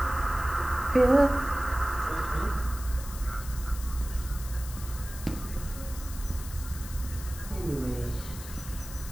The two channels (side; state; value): left; noise; hiss, 13 dB below the sound